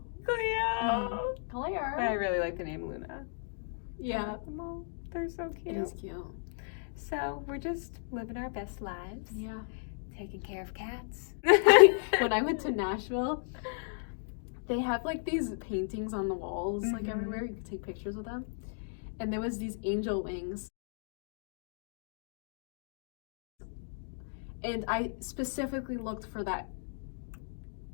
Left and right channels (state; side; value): silent; right; digital silence